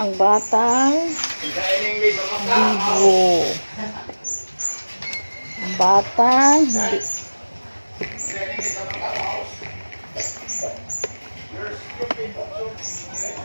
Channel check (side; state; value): both; inverted; correlation -1.00